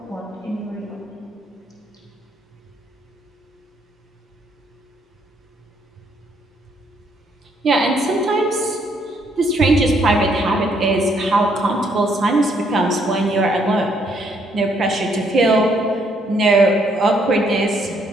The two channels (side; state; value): both; normal; correlation 0.70